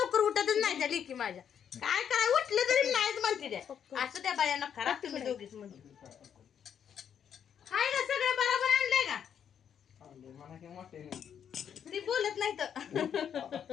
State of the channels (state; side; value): quieter; right; 8.4 dB